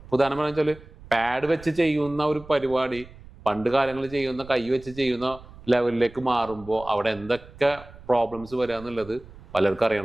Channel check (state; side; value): noise; right; rumble, 19 dB below the sound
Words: ഉദാഹരണം വെച്ചാൽ പാഡ് വെച്ച് ചെയ്യുന്ന ഒരു പരിപാടി പണ്ട് കാലങ്ങളിൽ ചെയ്യുന്ന കൈ വെച്ച് ചെയ്യുന്ന ലെവലിലേക്ക് മാറുമ്പോൾ അവിടെ എന്തൊക്കെ പ്രോബ്ലംസ് വരിക എന്നുള്ളത് പലർക്കും